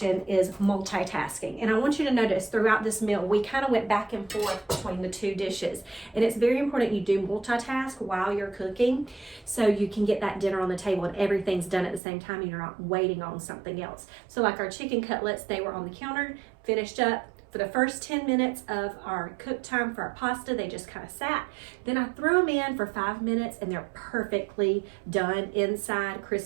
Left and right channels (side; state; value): left; drops out; at 12.0 s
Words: is multitasking. And I want you to notice throughout this meal, we kind of went back and forth between the two dishes. And it's very important you do multitask while you're cooking, so you can get that dinner on the table and everything's done at the same time and you're not waiting on something else. So like our chicken cutlets, they were on the counter, finished up. For the first 10 minutes of our cook time for our pasta, they just kind of sat. Then I threw them in for 5 minutes and they're perfectly done inside,